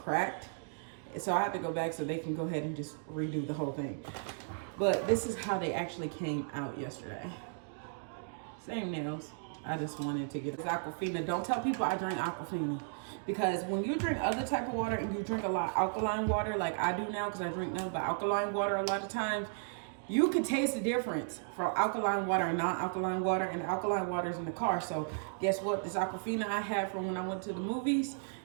So I have to go back so they can go ahead and just redo the whole thing. But this is how they actually came out yesterday. Same nails. I just wanted to get Aquafina. Don't tell people I drink Aquafina. Because when you drink other type of water and you drink a lot of alkaline water, like I do now, because I drink nothing but alkaline water a lot of times, you can taste the difference from alkaline water and non-alkaline water, and alkaline water is in the car. So guess what? This Aquafina I had from when I went to the movies,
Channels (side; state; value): left; silent; digital silence